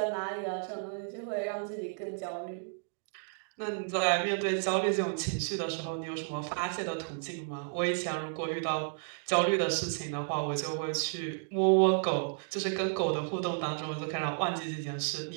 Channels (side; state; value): left; silent; digital silence